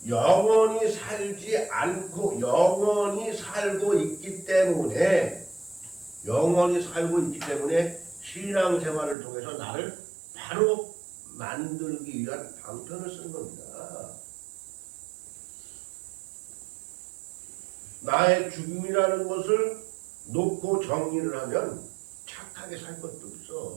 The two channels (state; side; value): drops out; left; at 9.2 s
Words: 영원히 살지 않고 영원히 살고 있기 때문에 신앙생활을 통해서 나를 바로 만들기 위한 방편을 쓴 겁니다. 나의 죽음이라는 것을 놓고 정리를 하면 착하게 살 것도